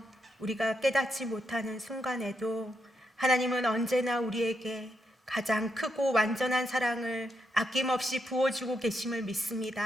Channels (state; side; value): normal; both; correlation 0.81